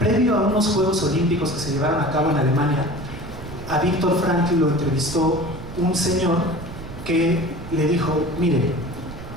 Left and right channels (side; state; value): right; noise; rumble, 13 dB below the sound